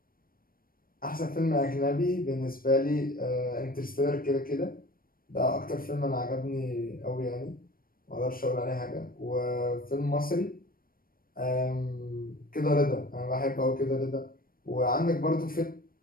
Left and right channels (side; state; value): right; late; 0.42 ms